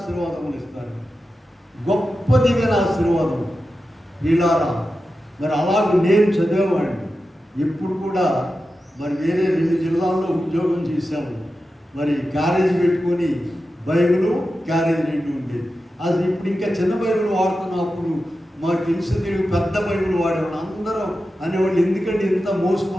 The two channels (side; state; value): both; normal; correlation 0.92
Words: ఇస్తారు. గొప్ప దీవెన ఆశీర్వాదం. ఇలారా మరి అలాగే నేను చదివేవాడిని. ఇప్పుడు కూడా మరి వేరే 2 జిల్లాల్లో ఉద్యోగం చేశాము. మరి క్యారేజ్ పెట్టుకొని బైబిల్ క్యారేజ్ 2 ఉండేది. అది ఇప్పుడు ఇంకా చిన్న బైబిల్ వాడుతున్నప్పుడు మాకు తెలిసి పెద్ద బైబిల్ వాడేవాళ్ళు. అందరూ అనేవాళ్ళు, ఎందుకంటే ఇంత